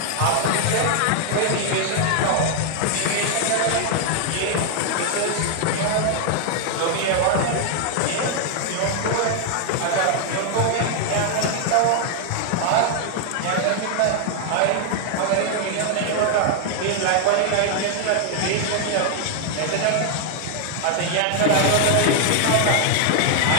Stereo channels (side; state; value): both; different; correlation 0.00